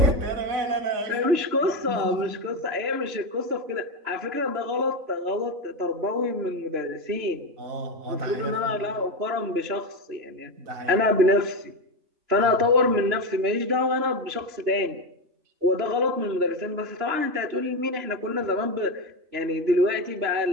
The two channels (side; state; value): left; late; 3.0 ms